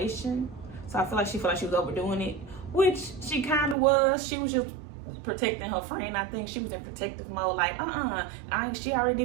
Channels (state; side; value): drops out; left; at 3.8 s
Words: So I feel like she felt like she was overdoing it, which she kind of was. She was just protecting her friend. I think she was in protective mode, like, she already